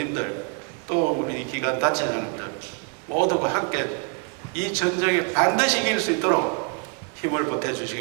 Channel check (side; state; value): left; quieter; 37.8 dB